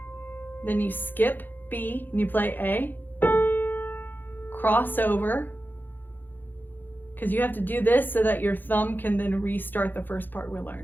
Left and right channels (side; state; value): right; late; 0.090 ms